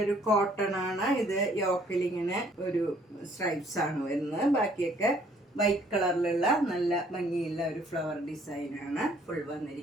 കോട്ടൺ ആണ്. ഇത് യോക്കിൽ ഇങ്ങനെ ഒരു സ്ട്രൈപ്സ് ആണ് വരുന്നത്. ബാക്കിയൊക്കെ വൈറ്റ് കളറിലുള്ള നല്ല ഭംഗിയുള്ള ഒരു ഫ്ലവർ ഡിസൈൻ ആണ് ഫുൾ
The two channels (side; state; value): both; normal; correlation 0.62